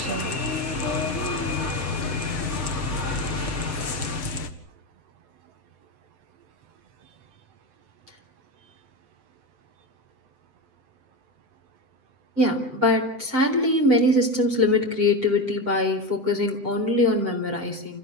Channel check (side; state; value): left; late; 7.9 ms